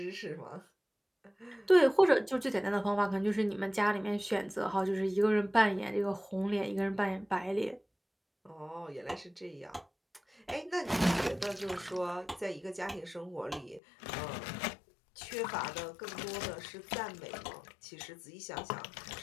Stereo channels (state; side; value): drops out; right; at 13.8 s